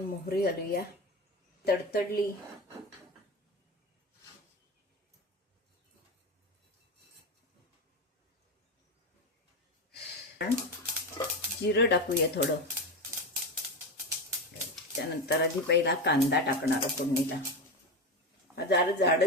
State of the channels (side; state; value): both; normal; correlation 0.19